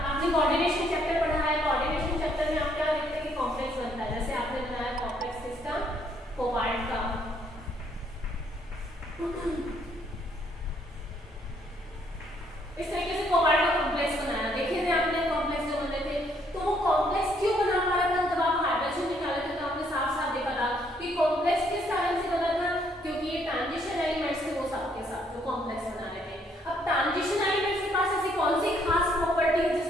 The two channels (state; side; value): normal; both; correlation 0.69